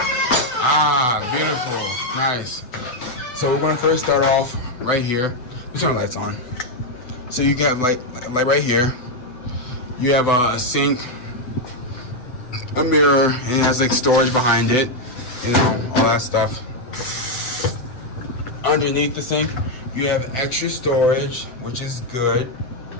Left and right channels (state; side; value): late; right; 7.9 ms